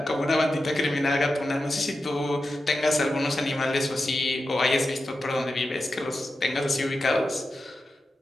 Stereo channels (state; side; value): normal; both; correlation 0.91